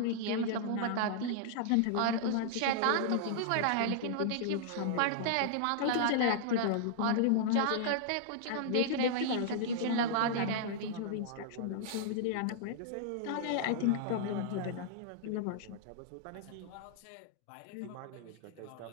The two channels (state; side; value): different; both; correlation -0.01